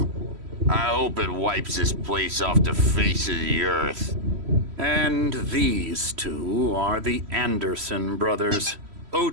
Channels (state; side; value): late; left; 3.1 ms